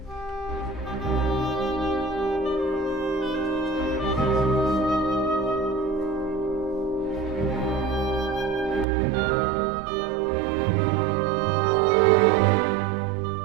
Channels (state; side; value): drops out; left; at 8.8 s